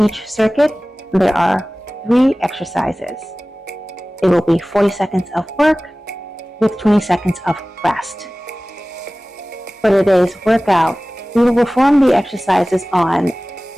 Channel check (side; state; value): both; normal; correlation 0.98